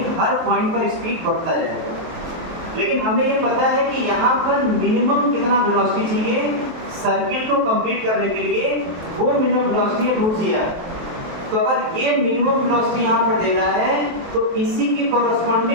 हर पॉइंट पर स्पीड बढ़ता जाएगा। लेकिन हमें ये पता है कि यहाँ पर मिनिमम कितना वेलोसिटी चाहिए सर्किल को कंप्लीट करने के लिए, वो मिनिमम वेलोसिटी है √gr। तो अगर ये मिनिमम वेलोसिटी यहाँ पर दे रहा है तो इसी के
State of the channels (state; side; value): late; left; 23 ms